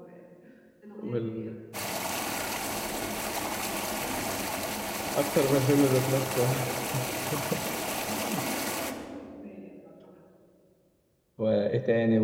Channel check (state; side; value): identical; both; correlation 1.00